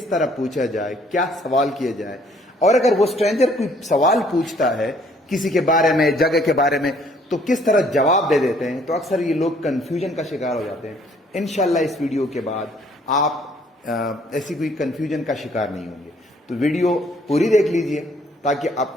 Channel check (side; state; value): both; normal; correlation 0.62